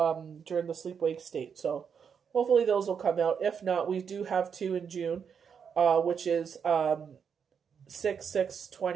during the sleep-wake state. So hopefully those will come out. If not, we do have 2 in June, which is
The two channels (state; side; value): quieter; left; 7.0 dB